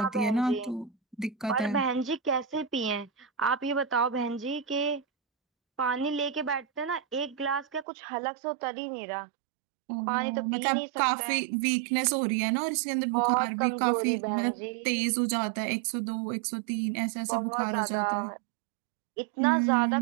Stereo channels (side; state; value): left; drops out; at 7.9 s